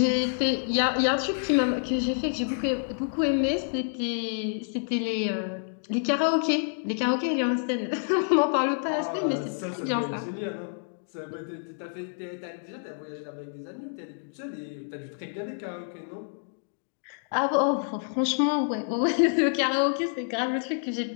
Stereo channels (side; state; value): right; silent; digital silence